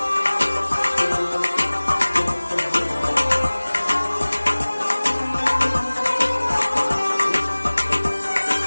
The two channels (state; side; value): inverted; both; correlation -1.00